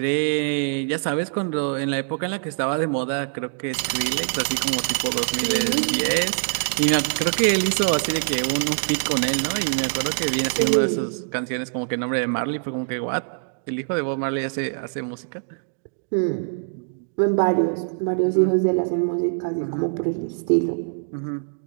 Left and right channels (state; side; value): silent; left; digital silence